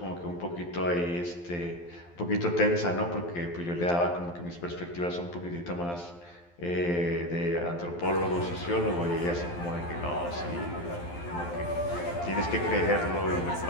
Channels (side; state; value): right; late; 12 ms